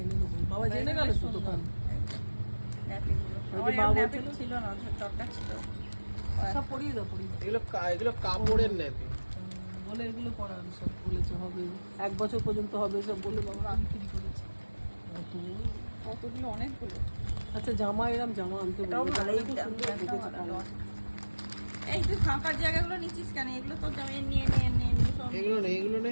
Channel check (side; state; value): both; inverted; correlation -1.00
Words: এনে দেবো। বাবা জেনে গেল তো দোকান। ছিল না, দরকার ছিল। সব পরিয়ে দাও, পরিয়ে দাও। এগুলো কাপড়ের নেবে বলে এগুলো পরান সব বলেছে হবে 1 বছর পর্যন্ত হবে সব বলে বাবা বিক্রি করেছে। কতগুলো, অনেকগুলো। আচ্ছা জামা এরম জামা আনতে বলবো। এই তুই ফাঁকার জায়গাগুলো নিচ্ছিস কেন? এগুলো তোর জামা নিয়ে এগুলো নেই, এগুলো